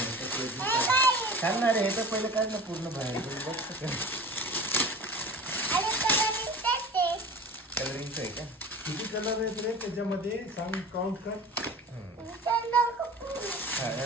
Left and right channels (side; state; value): both; normal; correlation 0.37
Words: सांगणार हे तर पहिलं काय ना पूर्ण बाहेर कलरिंगचं आहे का? किती कलर आहेत रे त्याच्यामध्ये? सांग काउंट कर. हा